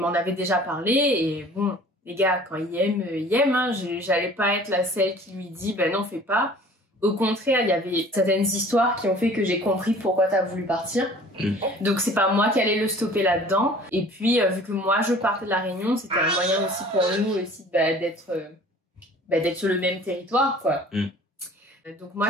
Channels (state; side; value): normal; both; correlation 0.48